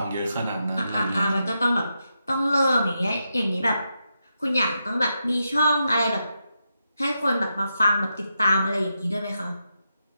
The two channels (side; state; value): both; inverted; correlation -0.86